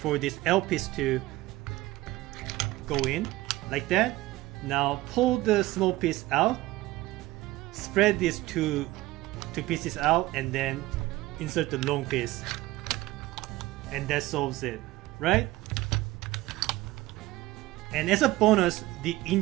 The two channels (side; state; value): left; quieter; 18.1 dB